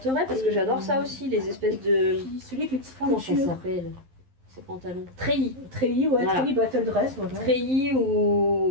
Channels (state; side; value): late; left; 11 ms